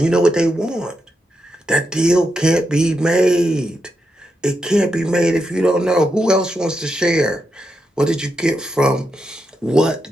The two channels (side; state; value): both; normal; correlation 0.84